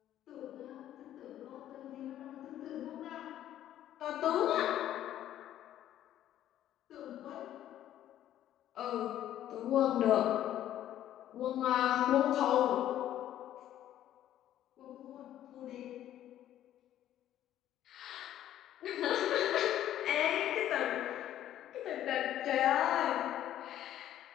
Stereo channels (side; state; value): right; quieter; 12.0 dB